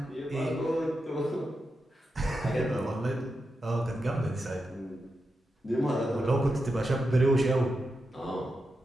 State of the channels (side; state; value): both; normal; correlation 0.88